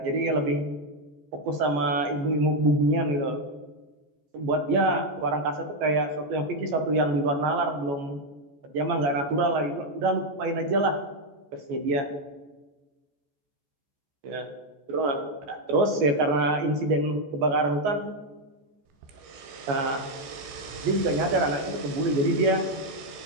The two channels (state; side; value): late; left; 14 ms